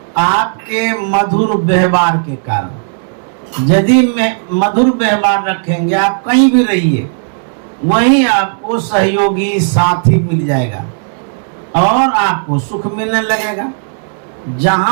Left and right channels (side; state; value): left; silent; digital silence